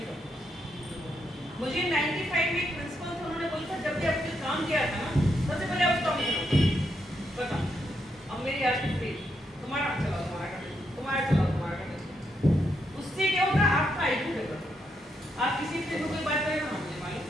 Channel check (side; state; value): both; normal; correlation 0.80